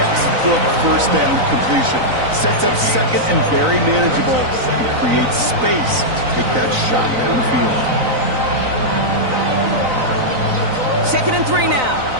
first down completion. Sets up second and very manageable and creates space to take that shot downfield. 2nd and 3 now.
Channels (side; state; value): left; late; 3.9 ms